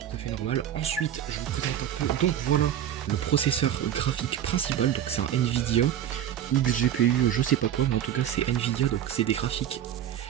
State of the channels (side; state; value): left; quieter; 10.4 dB